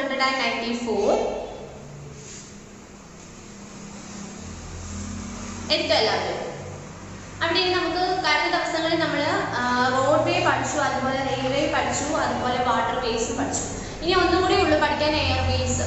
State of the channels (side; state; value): both; identical; correlation 1.00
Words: എടുക്കുക എല്ലാവരും. അവിടെ നമുക്ക് കഴിഞ്ഞ ദിവസങ്ങളിൽ നമ്മൾ റോഡ് വേ പഠിച്ചു, അതുപോലെ റെയിൽവേ പഠിച്ചു, അതുപോലെ വാട്ടർ വേസ് പഠിച്ചു. ഇനി ഒന്നും കൂടി ഉള്ളു പഠിക്കാൻ എയർവേസ്.